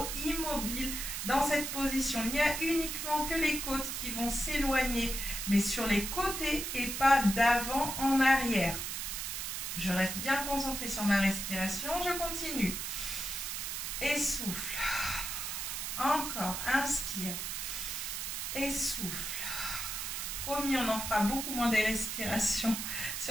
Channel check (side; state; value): right; noise; hiss, 4 dB below the sound